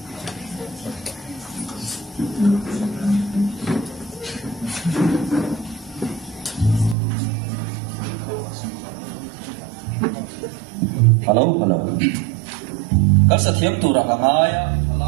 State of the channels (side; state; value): left; drops out; at 7.0 s